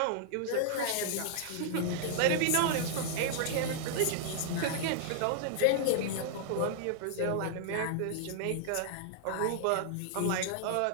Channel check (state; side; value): different; both; correlation -0.01